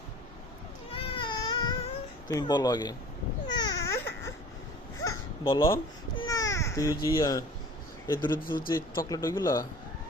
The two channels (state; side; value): normal; both; correlation 0.45